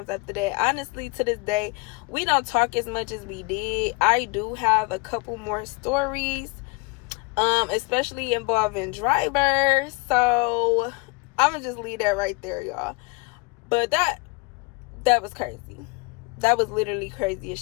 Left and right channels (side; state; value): right; quieter; 25.7 dB